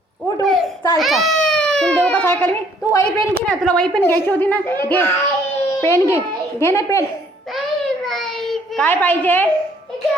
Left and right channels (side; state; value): both; normal; correlation 0.62